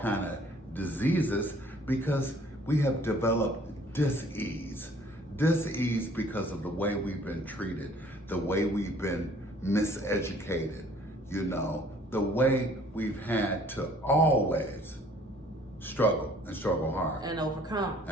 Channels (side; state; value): both; normal; correlation 0.56